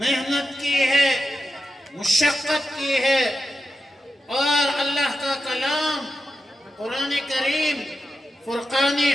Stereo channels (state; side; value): normal; both; correlation 0.89